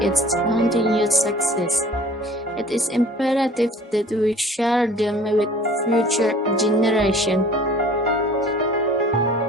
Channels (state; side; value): normal; both; correlation 0.49